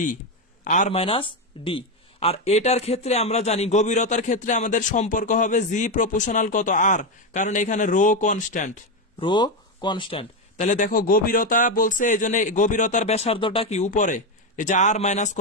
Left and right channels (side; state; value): both; normal; correlation 0.09